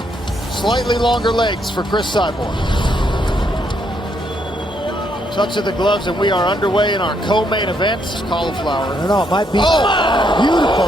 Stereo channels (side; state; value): both; normal; correlation 0.74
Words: Slightly longer legs for Chris Cyborg. Touch of the gloves, and we are underway in our co-main event. Cauliflower. No, it might be. Oh, beautiful.